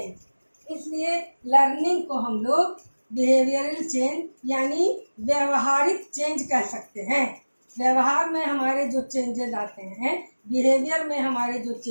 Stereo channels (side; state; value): both; inverted; correlation -1.00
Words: इसलिए लर्निंग को हम लोग बिहेवियरल चेंज यानी व्यवहारिक चेंज कह सकते हैं। व्यवहार में हमारे जो चेंजेस आते हैं, बिहेवियर में हमारे जो